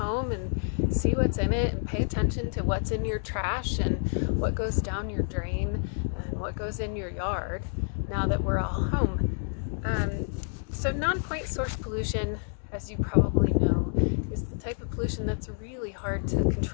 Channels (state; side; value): silent; right; digital silence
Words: and see what's in it and pay attention to what's in your trash and what goes down your drain and what goes in your yard now that we're all home. So non-point source pollution, as you probably know, is the type of pollution that's really hard to